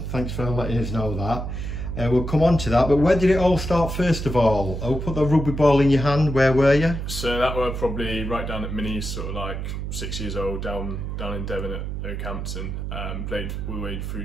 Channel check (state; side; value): noise; right; hum, 5 dB below the sound